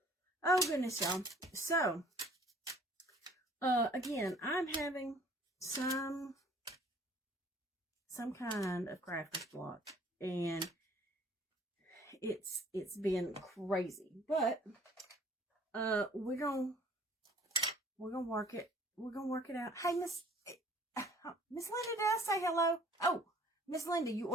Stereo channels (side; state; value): both; normal; correlation 0.55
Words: oh goodness, y'all. So, again, I'm having some kind of crafter's block, and it's been crazy, but, we're gonna work it. We're gonna work it out. Hey, Miss Linda, did I say hello? Oh, Miss Linda, you